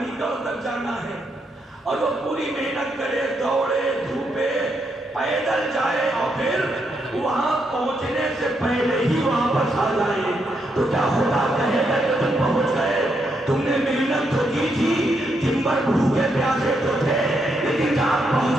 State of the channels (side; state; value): both; normal; correlation 0.79